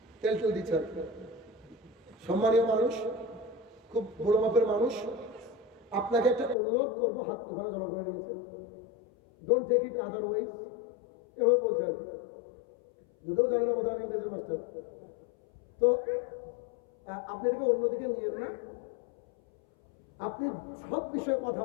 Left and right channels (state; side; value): drops out; right; at 6.6 s